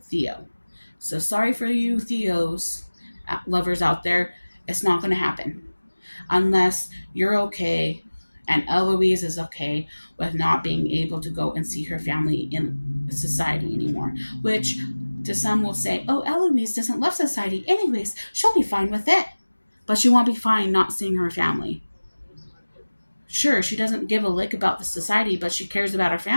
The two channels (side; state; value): both; inverted; correlation -1.00